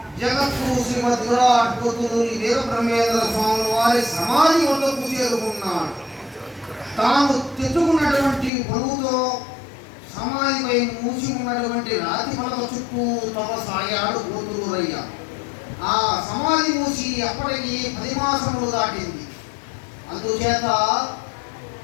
జగద్గురు శ్రీమద్ విరాట్ పోతులూరి వీరబ్రహ్మేంద్ర స్వామి వారి సమాధి వద్దకు చేరుకున్నాడు. తాను తెచ్చుకున్నటువంటి బరువుతో సమాధిపై మూసి ఉన్నటువంటి రాతి పలక చుట్టూ తపసాగాడు పోతులూరయ్య. ఆ సమాధి మూసి అప్పటికి 10 మాసములు దాటింది. అందుచేత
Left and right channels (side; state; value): right; drops out; at 8.5 s